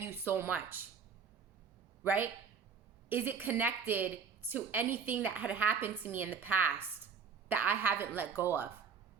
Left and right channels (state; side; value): quieter; left; 6.1 dB